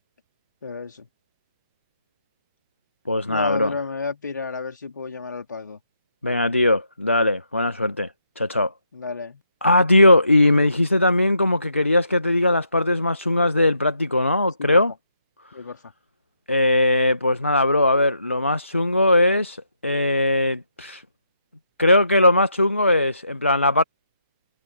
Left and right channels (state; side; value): inverted; both; correlation -0.77